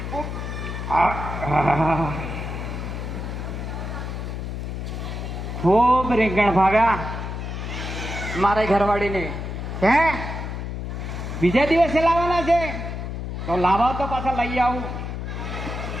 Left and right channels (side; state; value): left; noise; hum, 5 dB below the sound